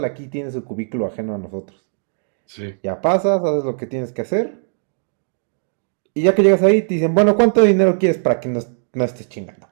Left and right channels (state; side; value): silent; left; digital silence